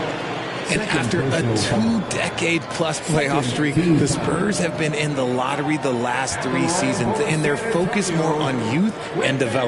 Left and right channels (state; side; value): identical; both; correlation 1.00